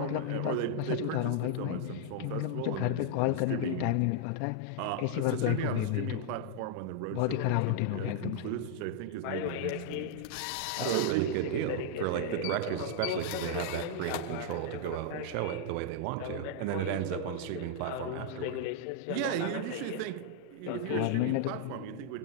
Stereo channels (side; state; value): both; different; correlation -0.01